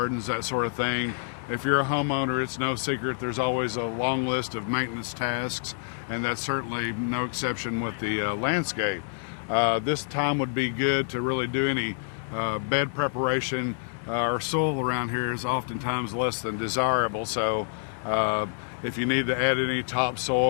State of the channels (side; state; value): right; silent; 60 dB below the other